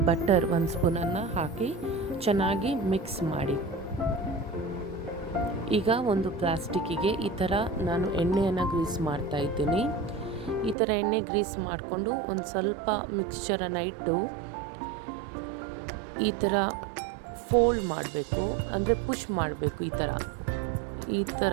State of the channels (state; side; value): drops out; left; at 10.8 s